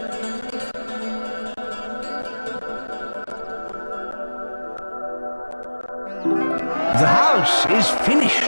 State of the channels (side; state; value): both; inverted; correlation -1.00